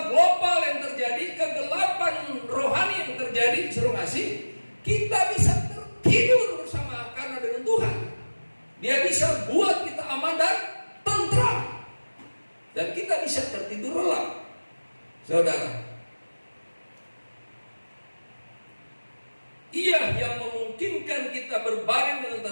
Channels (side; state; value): both; inverted; correlation -1.00